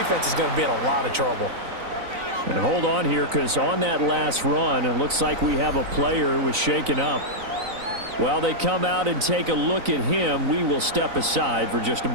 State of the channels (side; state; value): left; late; 3.9 ms